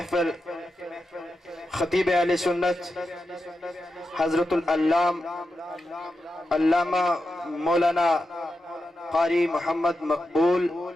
خطیب اہل سنت حضرت علامہ مولانا قاری محمد مقبول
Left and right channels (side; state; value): both; normal; correlation 0.89